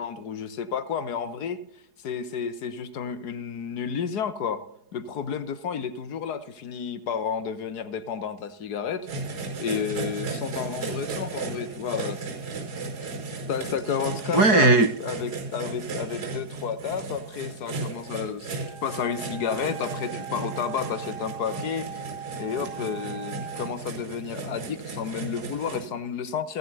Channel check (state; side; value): late; right; 4.8 ms